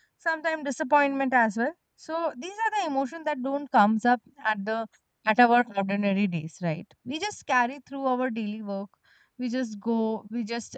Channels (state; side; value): identical; both; correlation 1.00